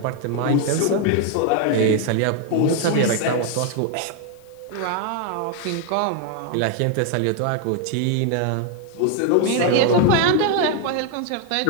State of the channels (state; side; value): different; both; correlation 0.01